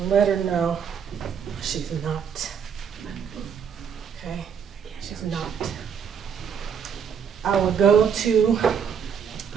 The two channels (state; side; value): quieter; left; 7.3 dB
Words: let her know she's not. Okay? She's not. I would go to